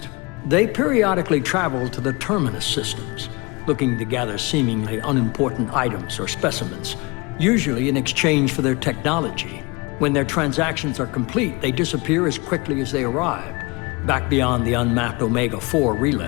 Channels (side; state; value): right; quieter; 26.3 dB